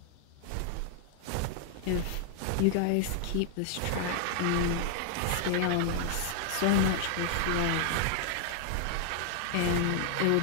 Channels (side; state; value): both; different; correlation 0.00